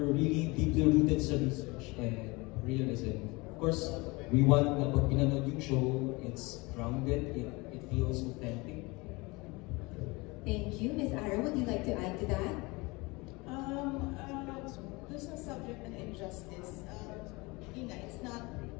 really deeply rooted sa research and realism. Of course, we want na pag pinanood yung show, it's grounded, it feels authentic. thank you. Miss Ara, would you like to add to that? Doon sa subject ng injustice, yun nga, it's not,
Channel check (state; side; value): quieter; right; 24.9 dB